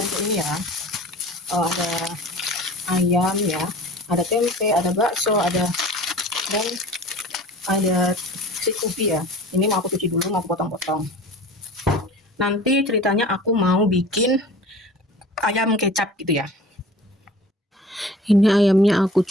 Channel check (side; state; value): both; normal; correlation 0.43